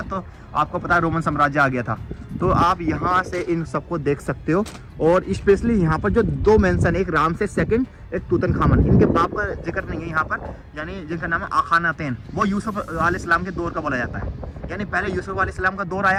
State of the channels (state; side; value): identical; both; correlation 1.00